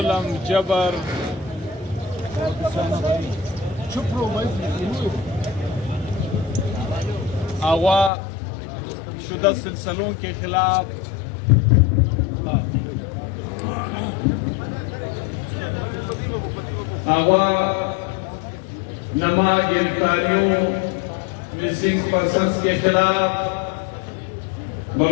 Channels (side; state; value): right; drops out; at 8.1 s